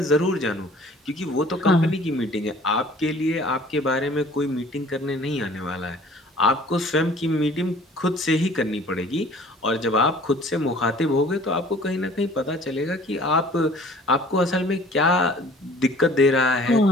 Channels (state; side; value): normal; both; correlation 0.51